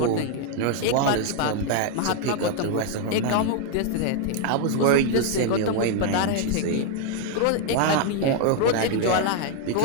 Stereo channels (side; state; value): both; different; correlation 0.01